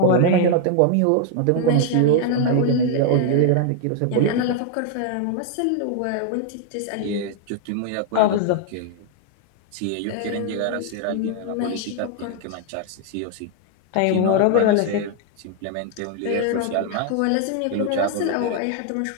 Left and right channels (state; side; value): different; both; correlation 0.00